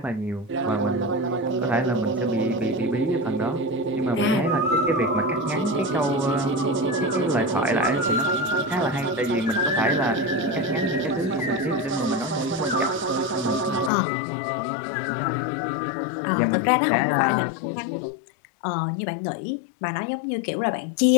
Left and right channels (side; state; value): right; drops out; at 13.9 s